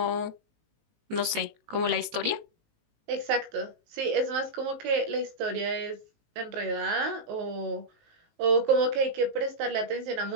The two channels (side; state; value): left; late; 19 ms